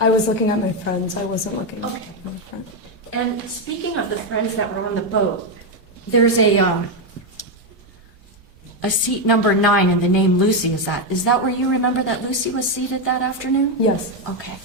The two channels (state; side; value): normal; both; correlation 0.05